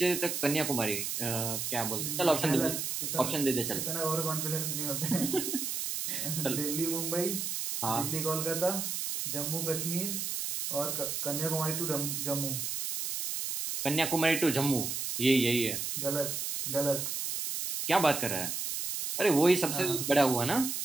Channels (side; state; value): right; noise; hiss, 2 dB below the sound